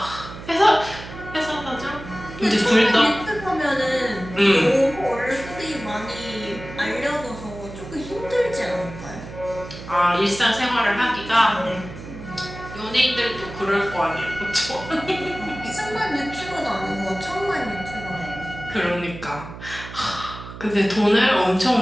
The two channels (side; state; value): right; noise; hum, 13 dB below the sound